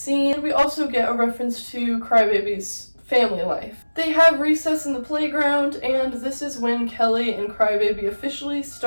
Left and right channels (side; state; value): both; inverted; correlation -1.00